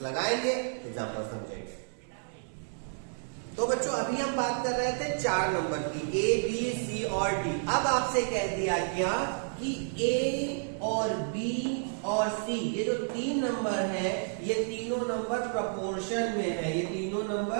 लगाएंगे, एग्जांपल समझेंगे। तो बच्चों अभी हम बात कर रहे थे 4 नंबर की, A B C और D। अब आपसे कह दिया गया कि A और B और C ये जो 3 नंबर है ये तीनों नंबर प्रपोर्शन में है। ये तीनों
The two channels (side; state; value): left; silent; 57 dB below the other